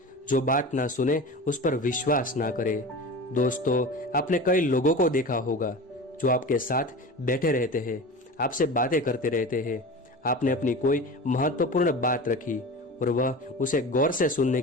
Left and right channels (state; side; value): normal; both; correlation 0.32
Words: जो बात ना सुने उस पर विश्वास ना करे। दोस्तों, आपने कई लोगों को देखा होगा जो आपके साथ बैठे रहते हैं, आपसे बातें करते रहते हैं। आपने अपनी कोई महत्वपूर्ण बात रखी और वह उसे गौर से सुनने